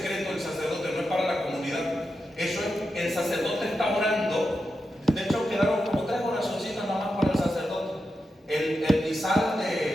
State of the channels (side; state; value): both; normal; correlation 0.89